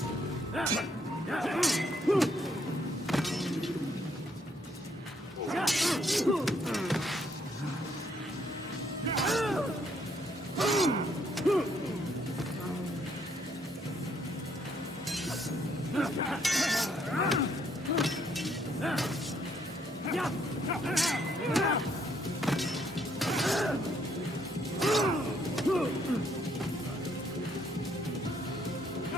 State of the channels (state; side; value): normal; both; correlation 0.70